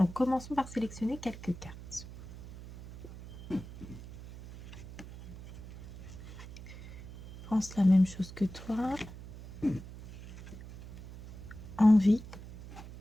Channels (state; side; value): noise; right; hum, 14 dB below the sound